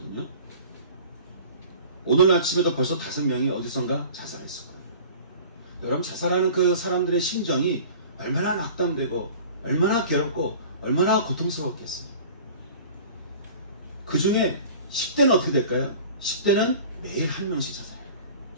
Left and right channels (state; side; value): inverted; both; correlation -0.42